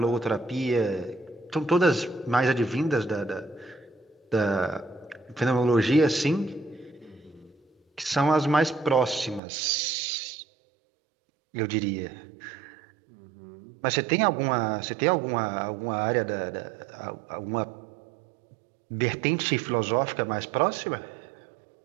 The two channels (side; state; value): left; drops out; at 9.4 s